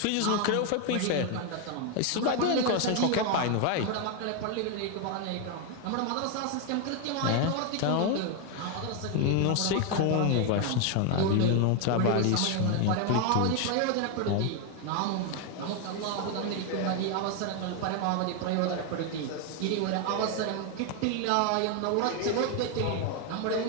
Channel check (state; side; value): different; both; correlation 0.01